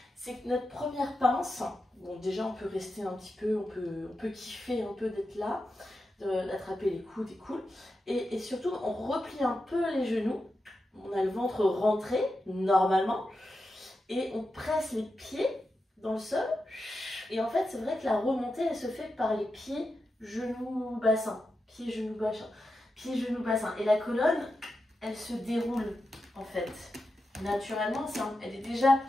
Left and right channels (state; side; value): normal; both; correlation 0.89